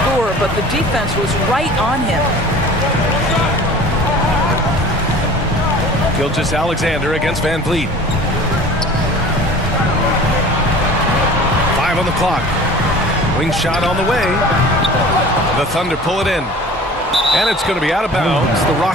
scorer, but the defense was right on him. Gilgeous-Alexander against VanVleet. 5 on the clock. Wing shot on the way. The Thunder pull it in. And it's going to be out of bounds. The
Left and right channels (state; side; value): normal; both; correlation 0.43